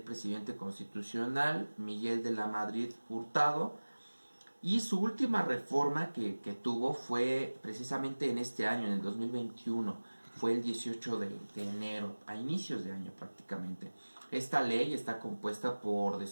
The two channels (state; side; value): inverted; both; correlation -1.00